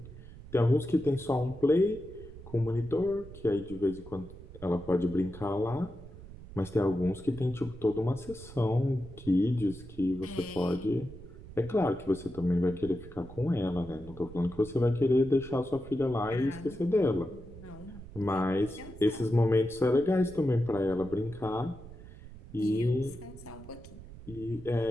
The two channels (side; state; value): right; noise; rumble, 16 dB below the sound